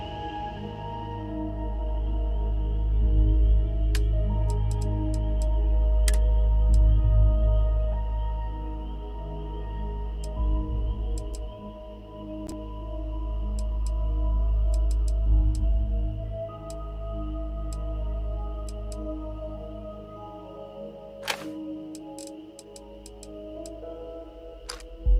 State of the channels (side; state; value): both; identical; correlation 1.00